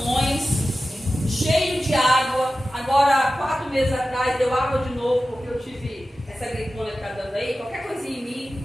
cheio de água. Agora, 4 meses atrás, deu água de novo, porque eu tive essa gripona que está dando aí. Qualquer coisinha em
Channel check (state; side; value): normal; both; correlation 0.94